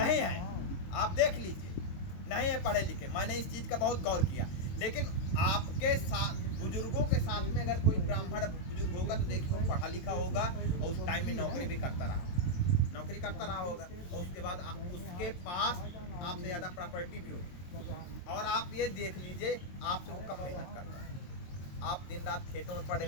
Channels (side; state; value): right; late; 22 ms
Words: है। आप देख लीजिए, नहीं है पढ़े लिखे। मैंने इस चीज़ का बहुत गौर किया। लेकिन आपके साथ बुजुर्गों के साथ में अगर कोई ब्राह्मण बुजुर्ग होगा तो देखिए वो पढ़ा लिखा होगा और उस टाइम में नौकरी भी करता रहा होगा, और उसके बाद उसके पास आपसे ज़्यादा प्रॉपर्टी भी होगी। और आप ये देख लीजिए, आपसे वो कब मेहनत करता है। आप दिन रात खेतों में पड़े